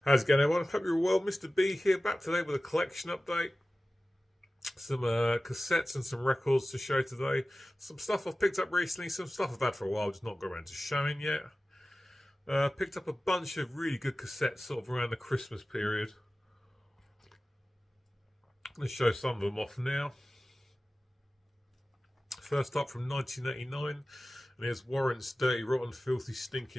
How's it going, everyone? Hope you're well. Mr. B here, back today with a collection update. Some cassettes and some records to show today. Some stuff I've picked up recently, some stuff I've had for a while, just not got around to showing yet. Picked up a bunch of really good cassettes sort of around the Christmas period. Let's show some of them off now. First up from 1989, and here's Warrant's Dirty, Rotten, Filthy,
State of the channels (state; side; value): normal; both; correlation 0.96